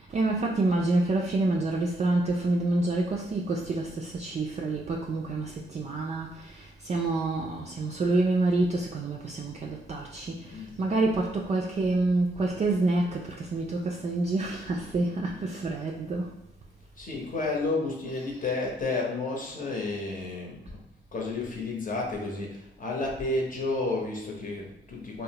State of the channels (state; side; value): normal; both; correlation 0.71